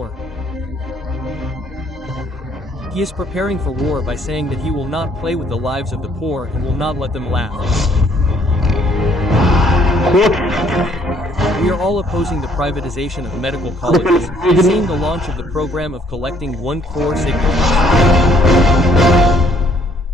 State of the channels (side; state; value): both; normal; correlation 0.64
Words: He is preparing for war by saying that he will not play with the lives of the poor and will not let them laugh. We are all opposing the privatization of medical colleges, seeing the launch of the program of collecting 1 crore signatures.